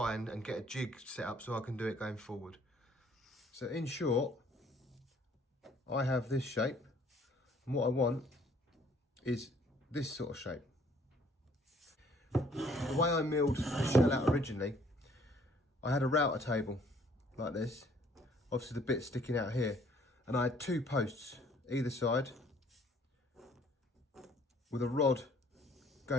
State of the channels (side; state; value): both; normal; correlation 0.59